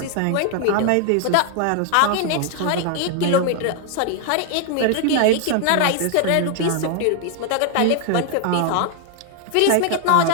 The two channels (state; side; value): different; both; correlation 0.00